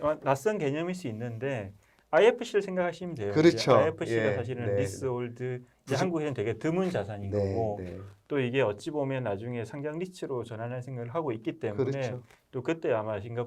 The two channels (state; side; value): identical; both; correlation 1.00